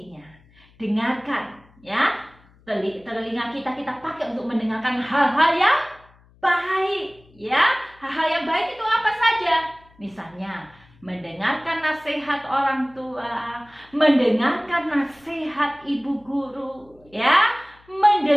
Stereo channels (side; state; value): left; noise; hum, 29 dB below the sound